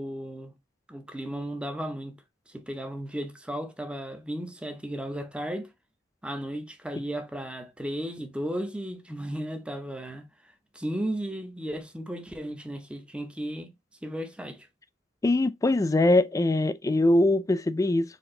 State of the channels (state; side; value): normal; both; correlation 0.84